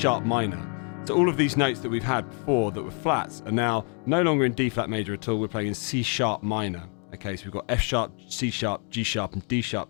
minor. So all of these notes that we've had before that were flats are now no longer in D flat major at all. We're playing in C sharp minor. Okay, so we've got F sharp, C sharp, G sharp, and D sharp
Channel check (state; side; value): quieter; right; 39.7 dB